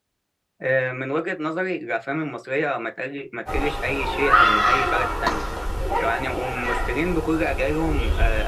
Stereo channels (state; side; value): identical; both; correlation 1.00